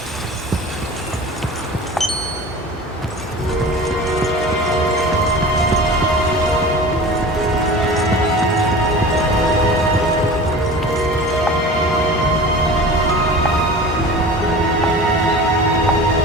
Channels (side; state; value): both; normal; correlation 0.37